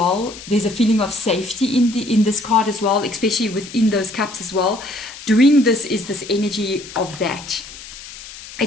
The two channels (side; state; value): left; noise; hiss, 15 dB below the sound